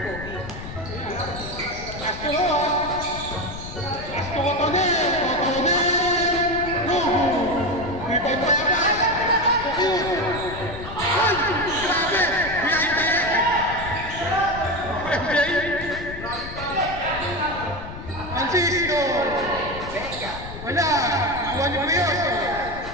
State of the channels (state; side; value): noise; left; rumble, 11 dB below the sound